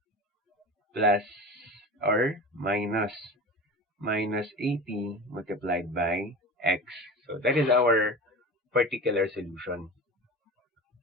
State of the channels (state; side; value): normal; both; correlation 0.31